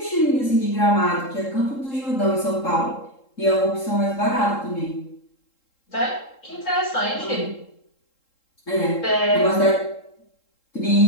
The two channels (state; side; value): late; right; 3.7 ms